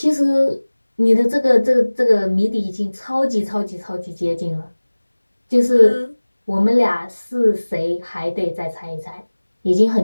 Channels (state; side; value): inverted; both; correlation -1.00